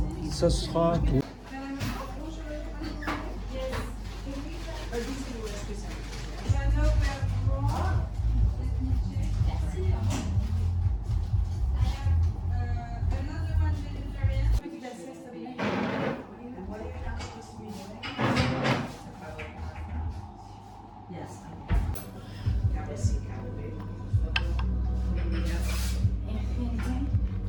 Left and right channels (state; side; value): identical; both; correlation 1.00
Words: Ça sera tout.